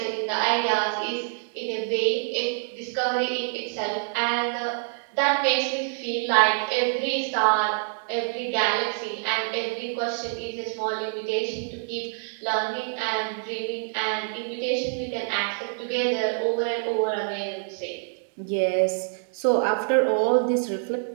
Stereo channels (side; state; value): left; silent; 61 dB below the other